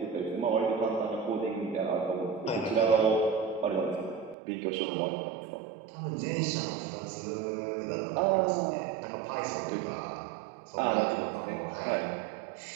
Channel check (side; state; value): left; drops out; at 4.4 s